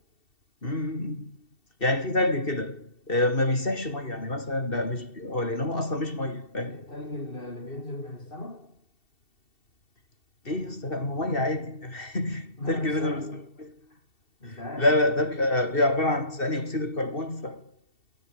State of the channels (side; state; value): right; late; 2.7 ms